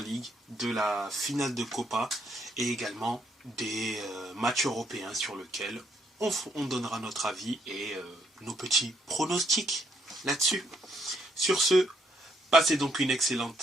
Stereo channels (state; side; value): normal; both; correlation 0.72